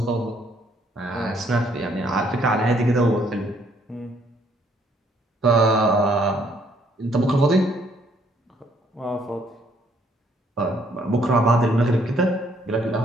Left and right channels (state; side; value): normal; both; correlation 0.67